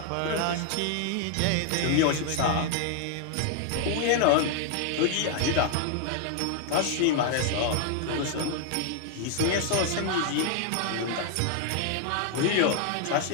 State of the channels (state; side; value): different; both; correlation 0.00